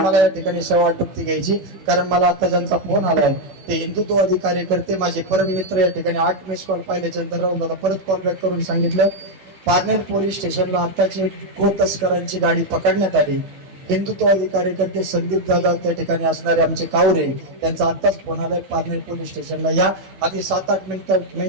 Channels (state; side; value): late; left; 16 ms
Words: या ठिकाणी सेवा आटोपती घ्यायची कारण मला आता ज्यांचा फोन आलाय ते हिंदुत्ववादी कार्यकर्ते माझे परम मित्र या ठिकाणी 8 मिस कॉल पाहिल्याच्या नंतर राहून दादा परत कॉल बॅक करून सांगितलं पारनेर पोलीस स्टेशनला आताची गो तस्करांची गाडी पकडण्यात आली हिंदुत्ववादी कार्यकर्ते संदीप दादा त्या ठिकाणी असणारे आमचे कावरे त्यांचा आत्ताच फोन आलाय पारनेर पोलीस स्टेशनला या अगदी 7-8